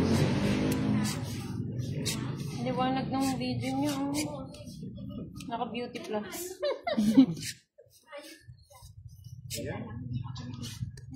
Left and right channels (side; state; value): both; identical; correlation 1.00